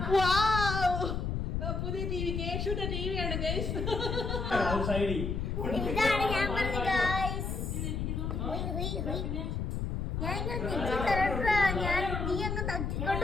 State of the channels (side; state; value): left; noise; rumble, 2 dB below the sound